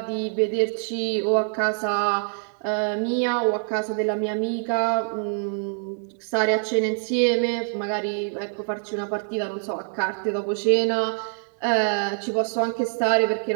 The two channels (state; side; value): silent; left; digital silence